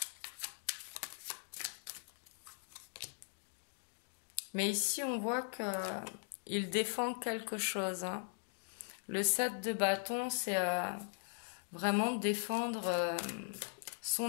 Mais ici, on voit qu'il défend quelque chose. Le 7 de bâton, c'est vraiment défendre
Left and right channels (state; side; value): silent; right; digital silence